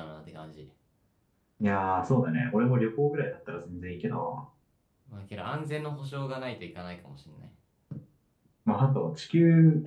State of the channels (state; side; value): identical; both; correlation 1.00